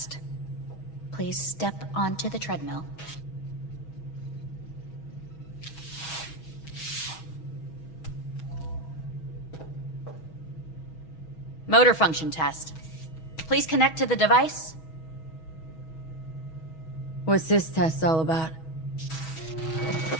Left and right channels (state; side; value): late; right; 6.2 ms